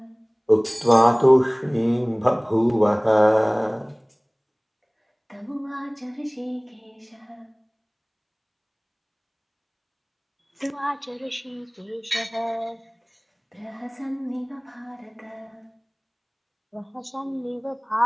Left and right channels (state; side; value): identical; both; correlation 1.00